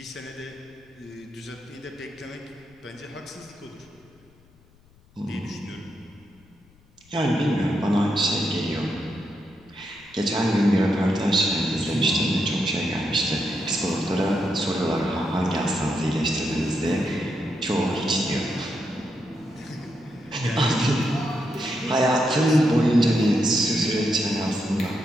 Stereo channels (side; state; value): left; noise; rumble, 29 dB below the sound